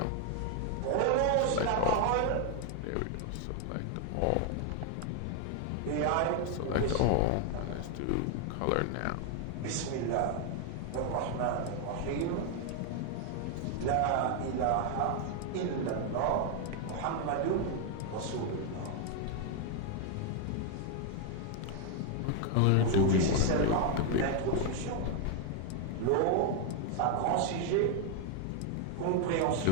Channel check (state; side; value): different; both; correlation 0.01